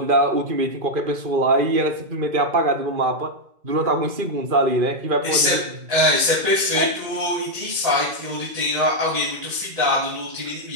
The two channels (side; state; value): left; late; 2.0 ms